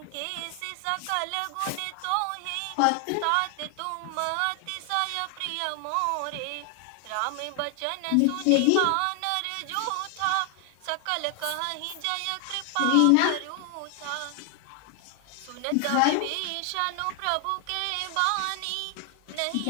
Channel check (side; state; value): both; different; correlation 0.00